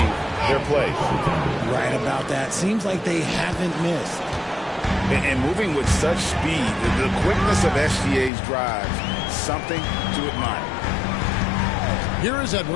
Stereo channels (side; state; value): right; drops out; at 8.3 s